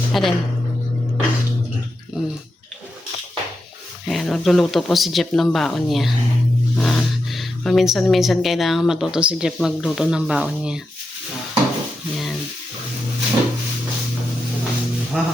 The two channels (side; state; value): both; normal; correlation 0.87